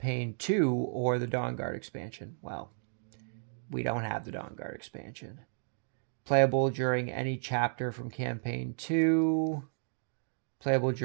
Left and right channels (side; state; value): left; silent; digital silence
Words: 2 or the Dawnguard expansion. Well, we don't have the Dawnguard expansion. Playable during any chapter from Campaign 2. Playable